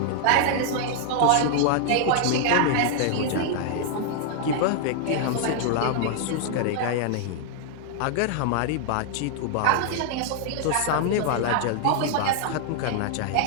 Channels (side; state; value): both; different; correlation 0.00